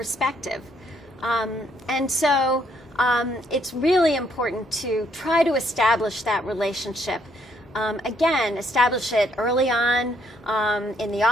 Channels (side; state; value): both; normal; correlation 0.70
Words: And so it's really important to try to establish that relationship. Again, establish it early on in the